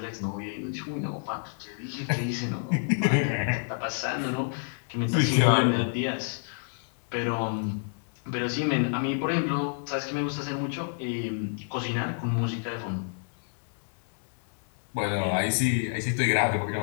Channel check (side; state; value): right; silent; digital silence